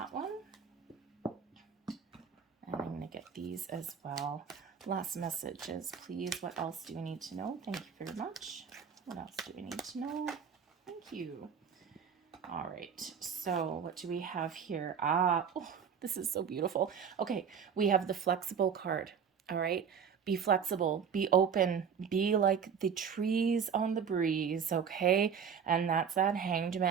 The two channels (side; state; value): left; quieter; 7.1 dB